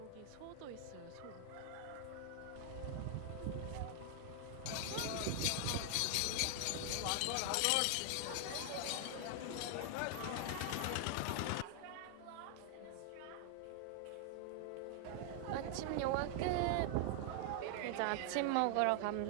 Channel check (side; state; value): both; different; correlation 0.00